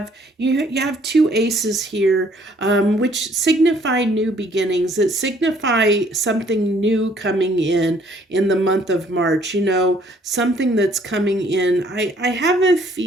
two aces here, which signify new beginnings. That signify something new coming in the month of March. Something that's coming in. I have a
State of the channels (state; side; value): normal; both; correlation 0.62